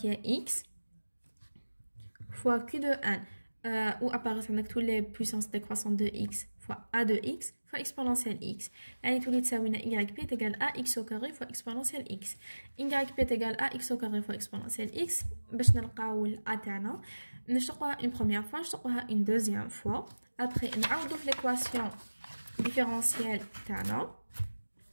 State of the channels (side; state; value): both; inverted; correlation -1.00